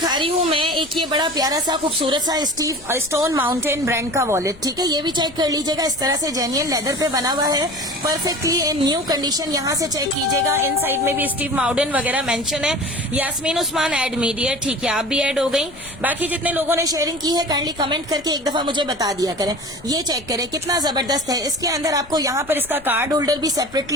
रही हूँ मैं एक ये बड़ा प्यारा सा खूबसूरत सा स्टोन माउंटेन ब्रांड का वॉलेट, ठीक है। ये भी चेक कर लीजिएगा, इस तरह से जेन्युइन लेदर पे बना हुआ है, परफेक्टली इन न्यू कंडीशन। यहाँ से चेक कीजिएगा, इन साइड में भी स्टीव माउडन वगैरह मेंशन है। यास्मीन उस्मान ऐड मीडिया, ठीक है, आप भी ऐड हो गई। बाकी जितने लोगों ने शेयरिंग की है काइंडली कमेंट करके एक दफा मुझे बता दिया करें। ये चेक करें कितना जबरदस्त है। इसके अंदर आपको यहाँ पर इसका कार्ड होल्डर भी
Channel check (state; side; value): noise; left; rumble, 23 dB below the sound